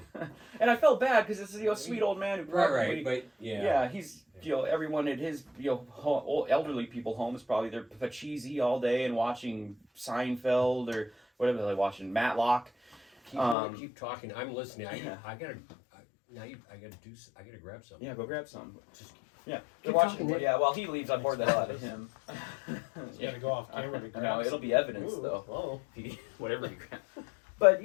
And I felt bad because it's a sweet old man who probably, he's everyone at his old elderly people home is probably they're cheesy all day and watching Seinfeld or whatever they're watching, Matlock. Keep talking. I'm listening. I gotta grab something. Yeah, go grab some. Keep they're watching. talking, Yeah, while he leaves, I bored the hell out of him. You gotta go off camera to grab. No, it'll be evidence though. Oh. Whatever he grabs. But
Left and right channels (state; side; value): drops out; right; at 13.6 s